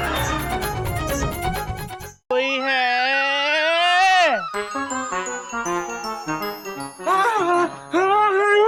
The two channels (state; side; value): identical; both; correlation 1.00